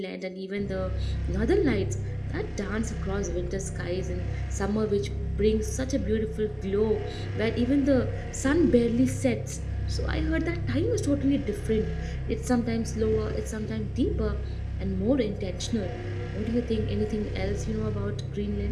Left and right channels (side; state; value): both; identical; correlation 1.00